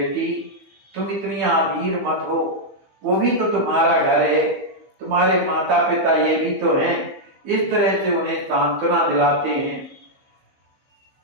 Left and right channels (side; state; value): left; late; 15 ms